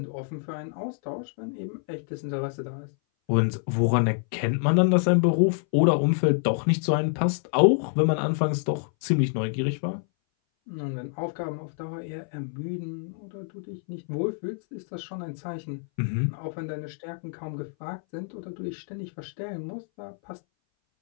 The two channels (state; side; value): silent; right; 59 dB below the other